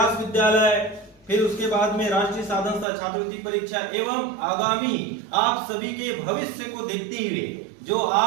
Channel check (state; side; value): drops out; left; at 2.9 s